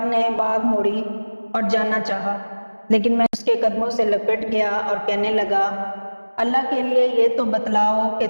نے باگ موڑی اور جانا چاہا، لیکن میں اس کے قدموں سے لپٹ گیا اور کہنے لگا: اللہ کے لیے یہ تو بتلاؤ کہ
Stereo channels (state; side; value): inverted; both; correlation -1.00